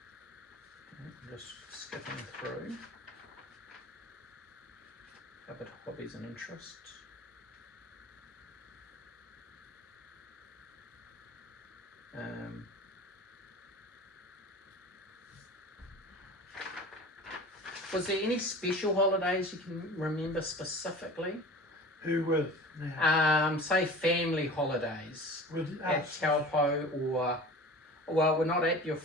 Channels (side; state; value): both; normal; correlation 0.39